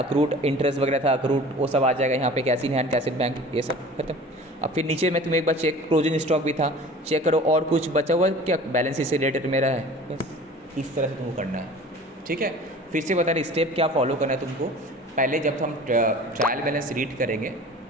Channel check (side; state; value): both; normal; correlation 0.43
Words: इंटरेस्ट वगैरह था, अक्रूड वो सब आ जाएगा यहाँ पे, cash in hand, cash in bank, ये सब खत्म। अब फिर नीचे में तुम एक बार चेक, क्लोजिंग स्टॉक भी था, चेक करो, और कुछ बचा हुआ क्या, बैलेंस शीट से रिलेटेड मेरा है, बस इस तरह से तुमको करना है, ठीक है। फिर से बता रहे स्टेप क्या फॉलो करना है तुमको, पहले जब हम ट्रायल बैलेंस रीड करेंगे